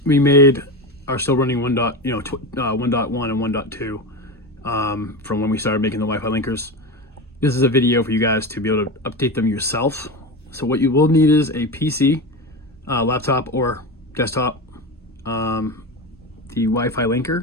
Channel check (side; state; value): both; normal; correlation 0.22